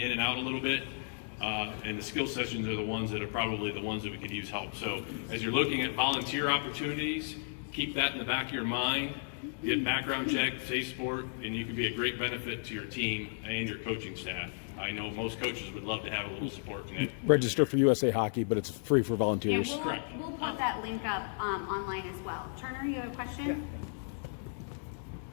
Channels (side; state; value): right; silent; digital silence